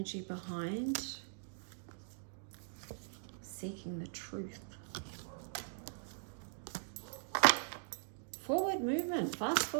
behind. Seeking the truth. Forward movement, fast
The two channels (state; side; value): silent; left; digital silence